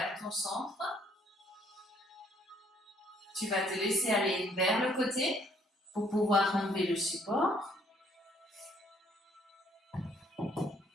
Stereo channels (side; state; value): both; normal; correlation 0.64